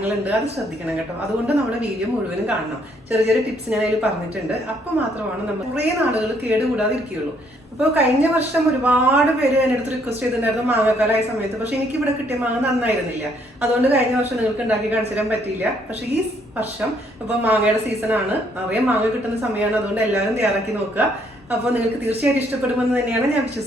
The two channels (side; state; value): both; normal; correlation 0.68